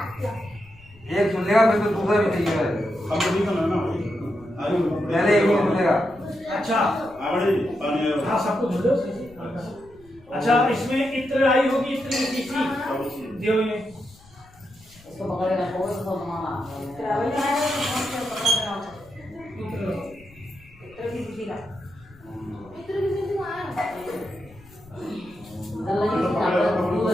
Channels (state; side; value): noise; left; rumble, 25 dB below the sound